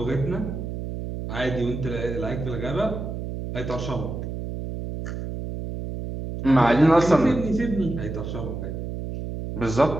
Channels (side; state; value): right; noise; hum, 6 dB below the sound